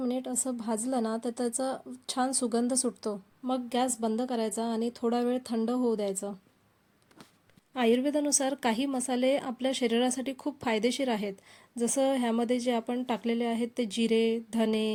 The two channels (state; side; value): identical; both; correlation 1.00